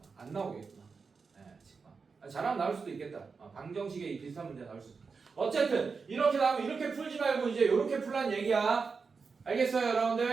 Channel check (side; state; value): left; quieter; 5.0 dB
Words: 안 나오겠구나. 네, 잘하면 나올 수도 있겠다. 방정식에 비슷한 문제 나올 수도 있겠다. 어쨌든 이렇게 나오면 이렇게 풀지 말고 이제 이렇게 풀란 얘기야. 알겠어요